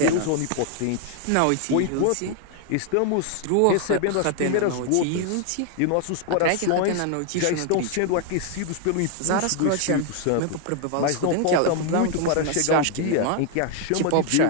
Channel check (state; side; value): different; both; correlation 0.00